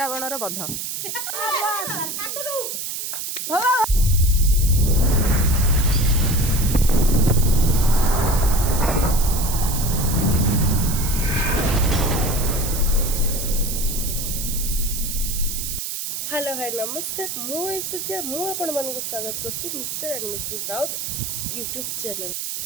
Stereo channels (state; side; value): noise; right; hiss, 4 dB below the sound